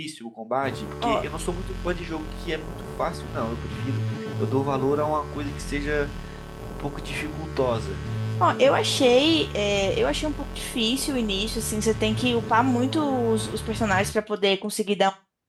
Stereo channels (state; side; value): identical; both; correlation 1.00